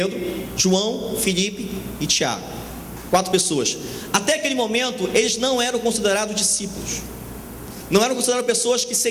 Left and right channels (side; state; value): both; identical; correlation 1.00